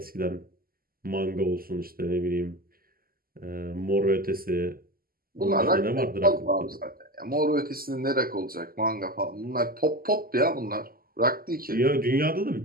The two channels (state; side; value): late; left; 0.42 ms